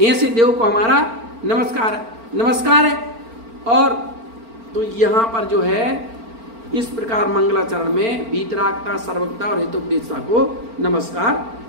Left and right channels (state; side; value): late; left; 4.4 ms